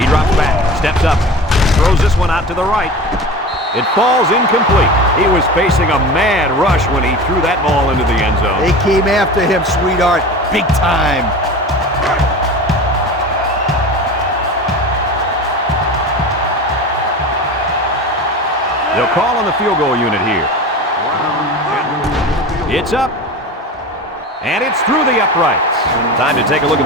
He drops back, steps up, throws this one out to the right. It falls incomplete. He was facing a mad rush when he threw that ball into the end zone. They came after him, sweetheart, big time. They'll call on the field goal unit here. It's up. And it's through the uprights. Time to take a look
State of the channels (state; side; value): normal; both; correlation 0.33